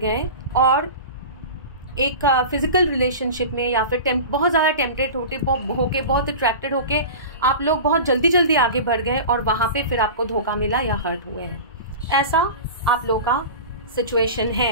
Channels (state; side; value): inverted; both; correlation -0.32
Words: और एक फिजिकल रिलेशनशिप में या फिर बहुत ज़्यादा टेम्पटेड होके, बहुत अट्रैक्टेड होके आप लोग बहुत जल्दी आगे बढ़ गए, और वहाँ पे फिर आपको धोखा मिला या हर्ट हुए हैं। ऐसा आप लोगों का सिचुएशन